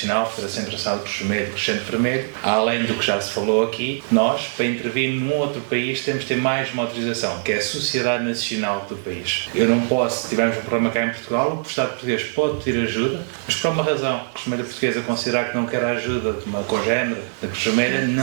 Federação Internacional de Cruz Vermelha e Crescente Vermelho, além do que já se falou aqui, nós, para intervir num outro país, temos de ter mais uma autorização, que é a Sociedade Nacional do país. Eu não posso, se tivermos um problema cá em Portugal, o Estado português pode pedir ajuda, mas por uma razão, a Cruz Vermelha Portuguesa considerar que não quer a ajuda de uma congénere da Cruz Vermelha,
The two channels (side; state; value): left; silent; digital silence